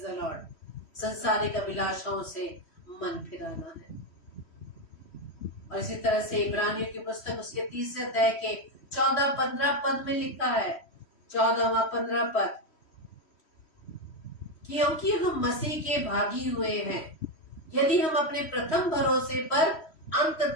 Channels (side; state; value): right; late; 3.1 ms